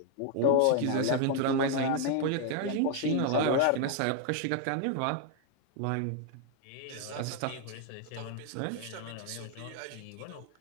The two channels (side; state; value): both; different; correlation 0.00